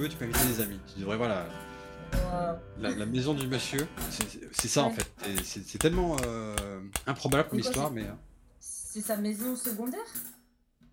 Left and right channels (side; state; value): both; identical; correlation 1.00